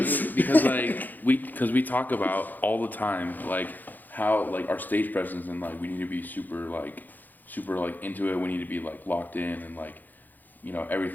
because like we talk about all the time like how like our stage presence and like we need to be super like into it. We need to be like locked in and like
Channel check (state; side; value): late; right; 0.085 ms